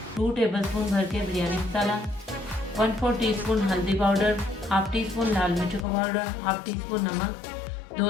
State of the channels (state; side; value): drops out; right; at 5.9 s